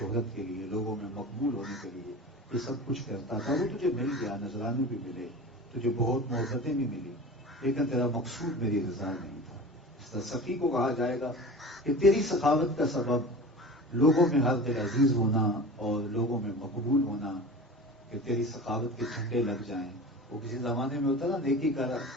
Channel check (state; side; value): normal; both; correlation 0.35